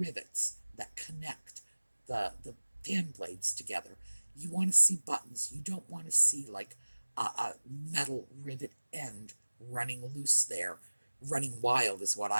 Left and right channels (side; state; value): both; inverted; correlation -1.00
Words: that connect the fan blades together. You want to see buttons. You don't want to see like a metal rivet end running loose there. Running wild is what